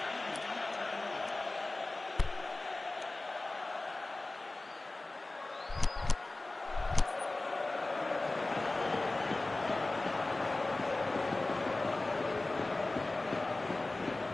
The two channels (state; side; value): quieter; right; 3.0 dB